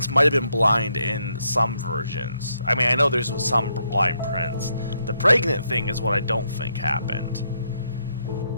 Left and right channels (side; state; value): both; inverted; correlation -0.76